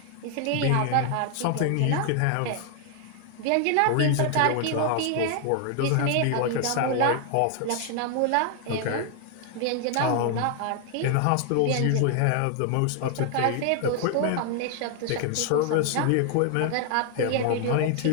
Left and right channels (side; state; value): both; different; correlation 0.00